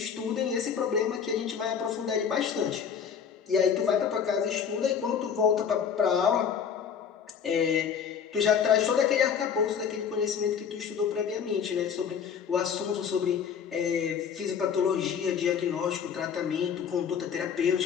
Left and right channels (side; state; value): right; quieter; 7.3 dB